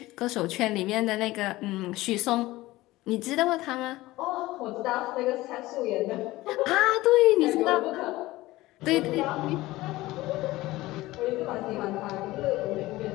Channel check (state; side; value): quieter; right; 18.3 dB